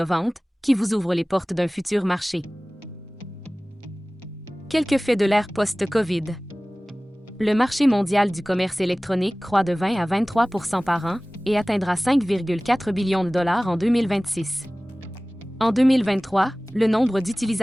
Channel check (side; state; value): both; normal; correlation 0.98